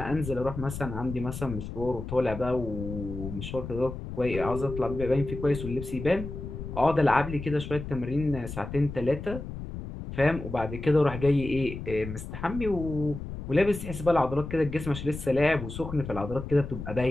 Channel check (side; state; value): left; noise; rumble, 8 dB below the sound